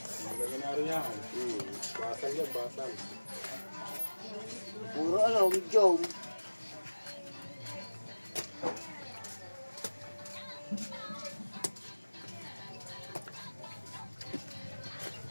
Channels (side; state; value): both; inverted; correlation -1.00